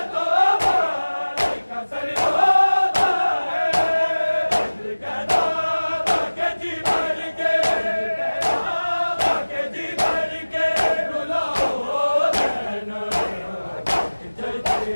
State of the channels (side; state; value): both; inverted; correlation -1.00